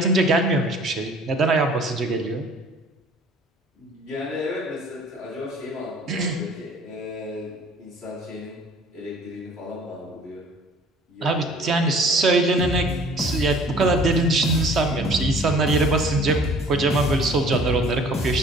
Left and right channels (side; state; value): both; normal; correlation 0.51